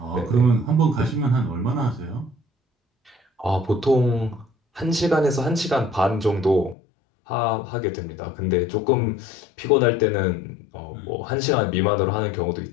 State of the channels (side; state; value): right; drops out; at 6.8 s